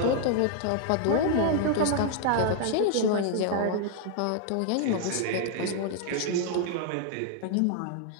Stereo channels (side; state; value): both; different; correlation 0.00